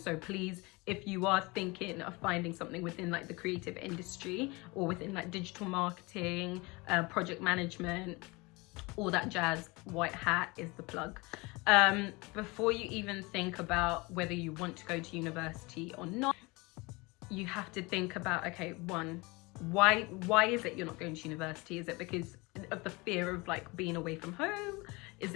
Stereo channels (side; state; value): right; quieter; 25.3 dB